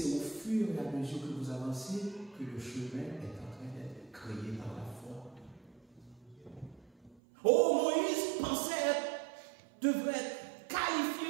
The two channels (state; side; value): drops out; left; at 7.2 s